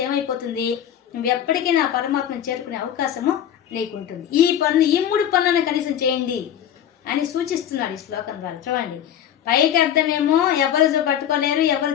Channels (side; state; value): right; quieter; 10.1 dB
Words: ఏమైపోతుంది, నువ్వు ఎప్పటికైనా ఆ పరమాత్మను చేరుకునే అవకాశము నీకుంటుంది. ఈ 3 పనులను కనీసం చేయండి అని సూచిస్తున్నాడు ఈ శ్లోకం ద్వారా. చూడండి, పైకి అర్థమేమో ఎవరు పట్టుకోలేరు, ఎవరు